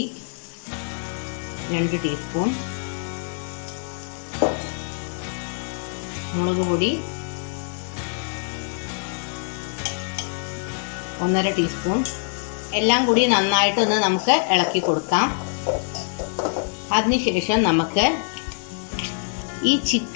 2 ടീസ്പൂൺ, മുളക് പൊടി 1.5 ടീസ്പൂൺ. എല്ലാം കൂടി നന്നായിട്ടൊന്ന് നമുക്ക് ഇളക്കി കൊടുക്കാം. അതിനുശേഷം നമുക്ക് ഈ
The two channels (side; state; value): right; silent; digital silence